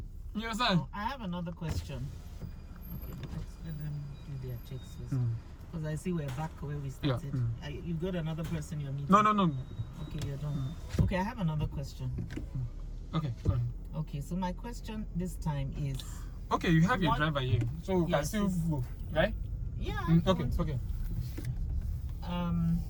You understand? Oh, I have another question. Okay, let them do their checks first. Because I see we're back where we started. You got another person you're meeting? No. Okay, you're done. Okay, I have another question. Okay, go ahead. Okay, so my question this time is... Okay, you have your What- driver here, so we can Yes, still it's- go, right? Yeah. I Okay, want- okay.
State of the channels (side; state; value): both; identical; correlation 1.00